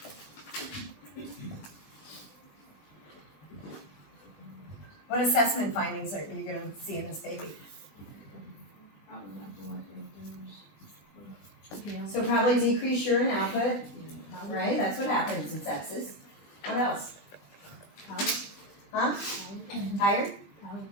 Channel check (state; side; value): late; right; 20 ms